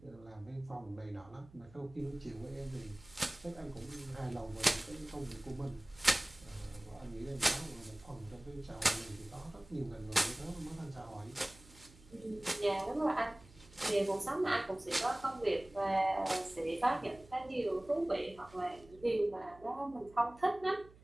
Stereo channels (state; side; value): noise; right; hum, 23 dB below the sound